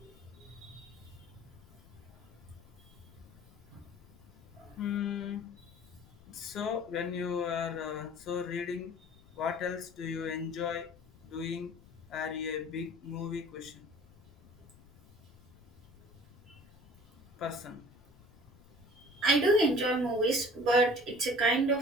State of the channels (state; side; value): noise; left; rumble, 24 dB below the sound